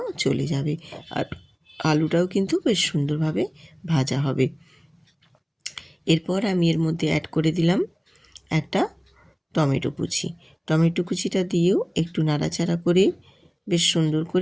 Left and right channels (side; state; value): both; identical; correlation 1.00